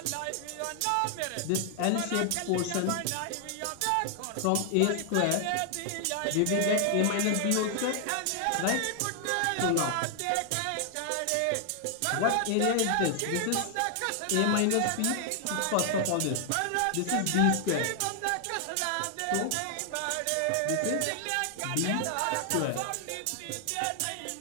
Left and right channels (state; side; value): different; both; correlation 0.00